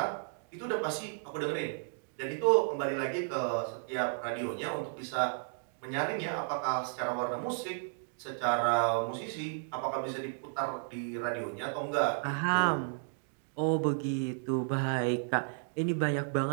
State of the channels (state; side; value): silent; left; digital silence